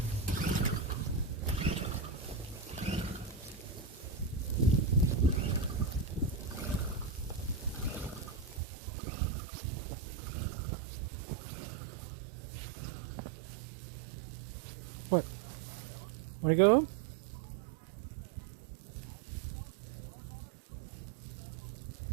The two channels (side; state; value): left; drops out; at 8.6 s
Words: What? Wanna go home?